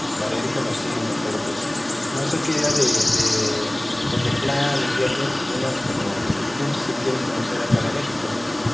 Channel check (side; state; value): right; noise; hum, 29 dB below the sound